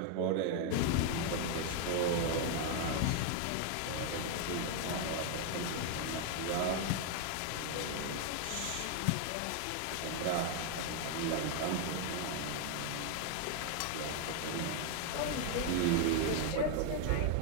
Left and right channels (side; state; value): both; different; correlation 0.00